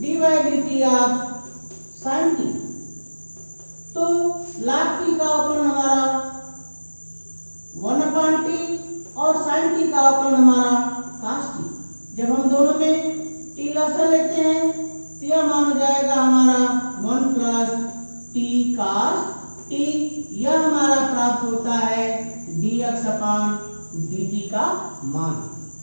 dy/dt of sin t। तो log t का अवकलन हमारा 1/t और sin t का अवकलन हमारा cos t। जब हम दोनों में t लसा लेते हैं तो यह मान हो जाएगा हमारा 1 plus t cos t। यह हमारा प्राप्त होता है dx/dt का मान।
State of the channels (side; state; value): both; inverted; correlation -1.00